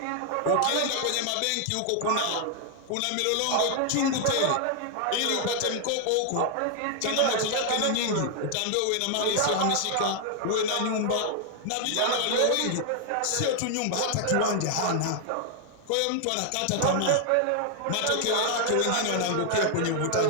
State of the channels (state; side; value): different; both; correlation 0.00